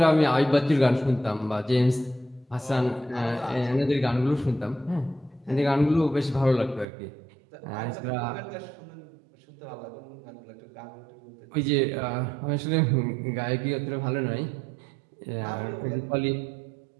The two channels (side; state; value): left; drops out; at 6.9 s